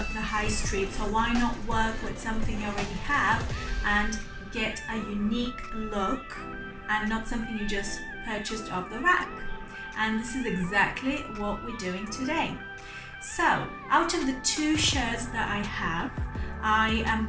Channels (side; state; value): both; identical; correlation 1.00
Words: high street, so why not work with something you already have and get a unique look and not something you just purchased off the rack. And this is exactly what we're doing today. So, out of the two shirts that I have, I am